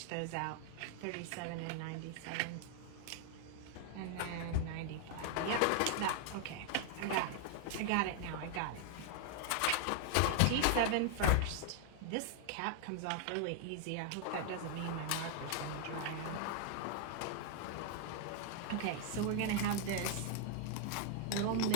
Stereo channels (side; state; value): both; different; correlation 0.00